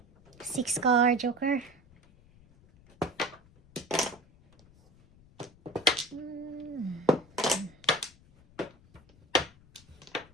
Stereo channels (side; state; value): left; noise; rumble, 27 dB below the sound